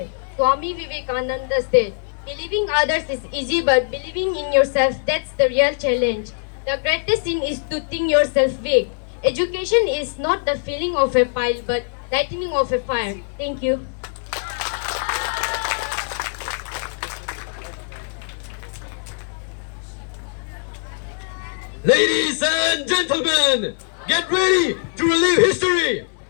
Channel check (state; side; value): silent; right; digital silence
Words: Swami Vivekananda said, believing others is easy, but believing in yourself, that's the real challenge. The greatest sin is to think yourself weak. Education is not the filling of a pile, but lightening of a fire. Thank you. Ladies and gentlemen, get ready to relive history.